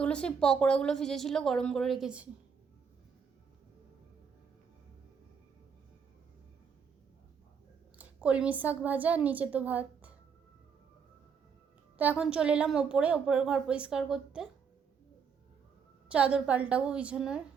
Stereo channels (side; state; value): left; quieter; 6.4 dB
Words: সেই পকোড়াগুলো ভিজেছিল, গরম করে রেখেছি। কলমি শাক ভাজা, আর নিচে তো ভাত। তো এখন চলে এলাম ওপরের ঘর পরিষ্কার করতে, চাদর পাল্টাবো বিছানার।